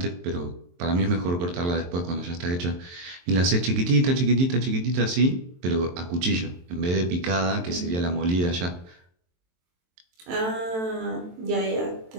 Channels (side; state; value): left; late; 23 ms